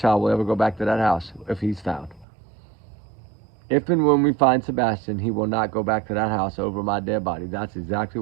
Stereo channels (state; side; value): drops out; left; at 2.2 s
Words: will ever go back to that house if he's found. If and when we find Sebastian, he will not go back to that house over my dead body. That's exactly